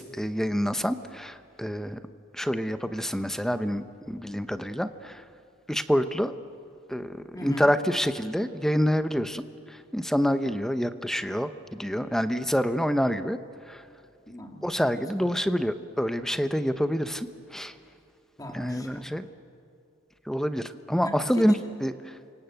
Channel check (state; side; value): normal; both; correlation 0.94